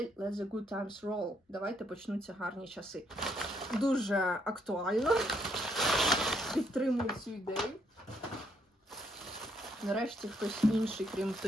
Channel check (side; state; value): both; normal; correlation 0.72